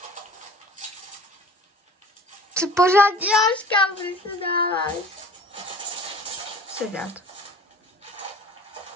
Co pořád děláš, kam ty se dáváš? Sedat.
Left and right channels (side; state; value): both; normal; correlation 0.45